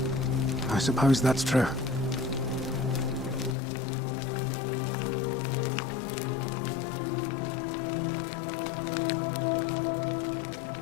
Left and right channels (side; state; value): right; drops out; at 3.6 s